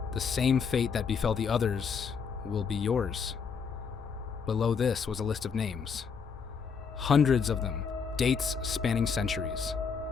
The same fate that befell the others will be yours. Below this was a list of names. Hundreds of them, dates spanning centuries.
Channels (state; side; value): quieter; right; 6.0 dB